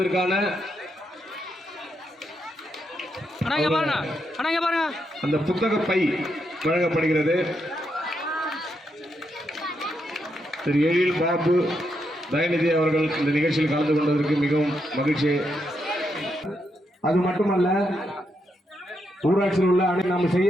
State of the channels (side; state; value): both; normal; correlation 0.81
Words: அந்த புத்தக பை வழங்கப்படுகிறது. திரு எழில் பாபு தயநிதி அவர்கள் இந்த நிகழ்ச்சியில் கலந்து கொண்டதற்கு மிகவும் மகிழ்ச்சி. அது மட்டுமல்ல, ஊராட்சியில் உள்ள நாம்